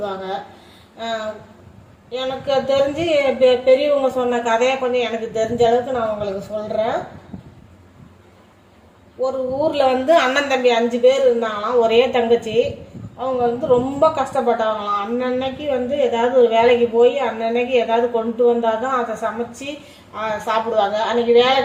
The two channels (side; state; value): both; identical; correlation 1.00